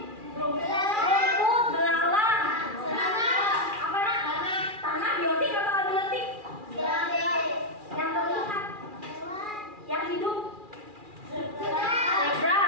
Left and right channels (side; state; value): left; late; 2.4 ms